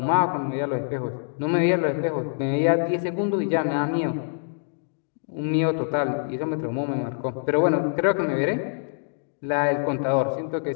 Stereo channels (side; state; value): right; silent; digital silence